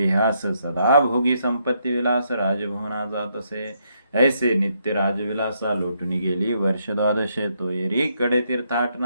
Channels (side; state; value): both; inverted; correlation -0.76